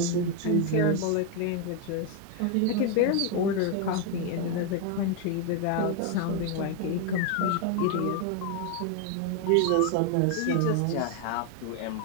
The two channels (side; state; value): both; different; correlation 0.01